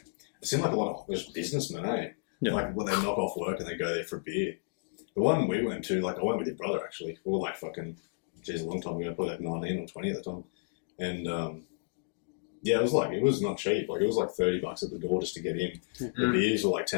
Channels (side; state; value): right; silent; digital silence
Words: like a lot of just businessmen, eh? Yeah. Like when they knock off work and they go there for a beer. The one we went to, like I went with your brother actually. We were like fucking, geez, a long time ago, probably like 19 or 20 at the time, and yeah, it was not cheap. Like it was like $30 at the door just to get in. The beers were like